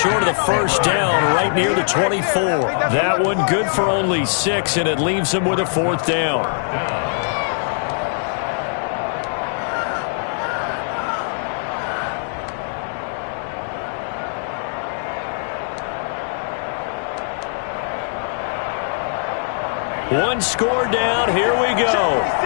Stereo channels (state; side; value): silent; right; digital silence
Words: of the first down right near the 24. That one good for only 6, and it leaves him with a 4th down. One score down. Here we go.